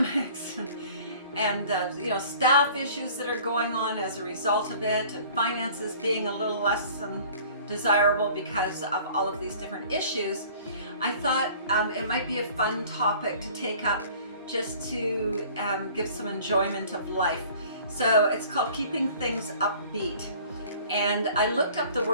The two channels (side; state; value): both; inverted; correlation -0.49